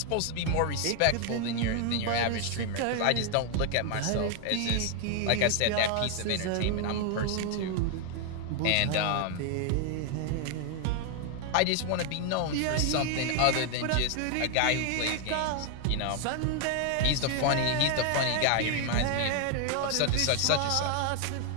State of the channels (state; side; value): different; both; correlation 0.00